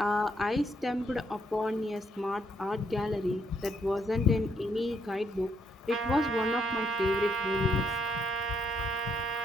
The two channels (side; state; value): both; normal; correlation 0.73